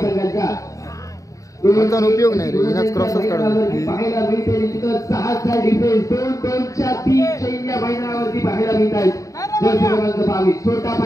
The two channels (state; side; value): late; right; 0.16 ms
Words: म्हणजे कोणता उपयोग नाही रे हिनाच क्रॉसच काढून पाहायला मिळते निश्चितच 6चा डिफेन्स 2-2च्या 3 चैन्या मैदानावरती पाहायला मिळत आहेत जर क्रमांक 22 छोटा